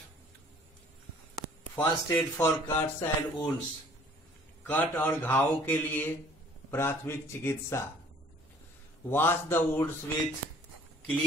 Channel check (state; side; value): normal; both; correlation 0.55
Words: First aid for cuts and wounds, cut और घावों के लिए प्राथमिक चिकित्सा. Wash the wounds with